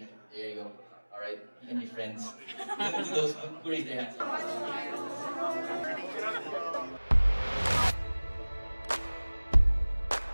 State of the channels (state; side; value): inverted; both; correlation -1.00